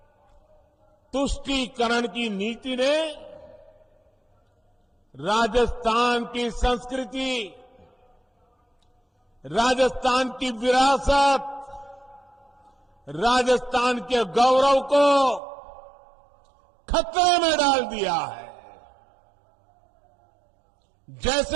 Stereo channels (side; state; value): left; drops out; at 15.4 s